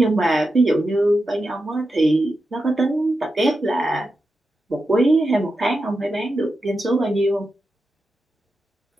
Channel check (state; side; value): normal; both; correlation 0.89